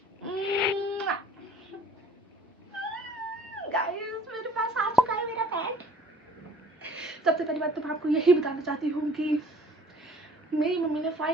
गाइस मेरे पास आ चुका है मेरा पेट। सबसे पहली बात तो मैं आपको यही बताना चाहती हूँ कि मेरी मम्मी ने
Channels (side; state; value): both; normal; correlation 0.54